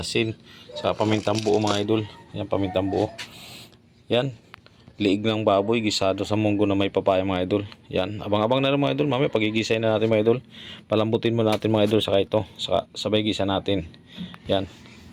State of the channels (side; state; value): both; identical; correlation 1.00